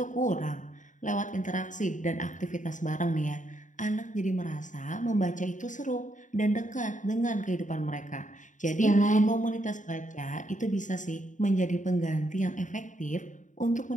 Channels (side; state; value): right; late; 0.37 ms